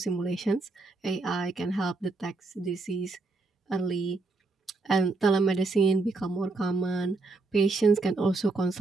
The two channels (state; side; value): quieter; left; 3.4 dB